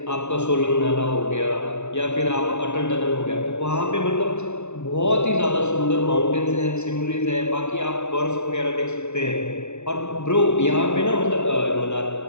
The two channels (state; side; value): late; right; 0.82 ms